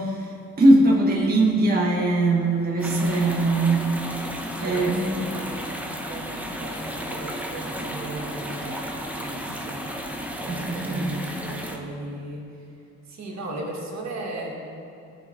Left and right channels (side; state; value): both; normal; correlation 0.72